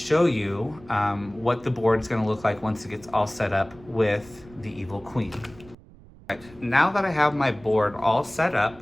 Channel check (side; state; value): right; noise; rumble, 23 dB below the sound